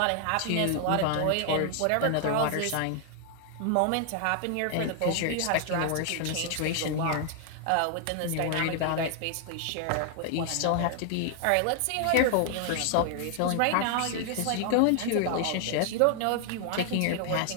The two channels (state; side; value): different; both; correlation 0.00